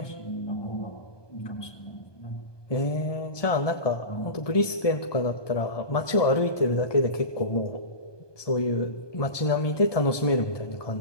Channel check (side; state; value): right; late; 1.2 ms